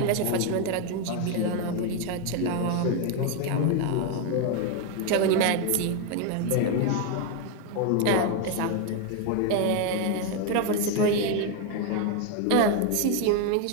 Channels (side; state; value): both; different; correlation 0.01